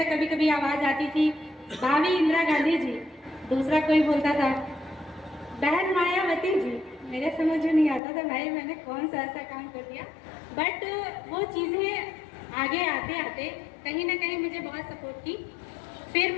कभी कभी आवाज़ आती थी, भाभी इंदिरा गांधी जी, दूसरा कोई बोलता था बहन मायावती जी। मेरे समझ में नहीं आता था भाई मैंने कौन सा ऐसा काम कर दिया, बट वो चीज़ें आगे आते आते कहीं ना कहीं मुझे बहुत सपोर्ट की। फिर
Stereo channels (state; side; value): drops out; right; at 8.0 s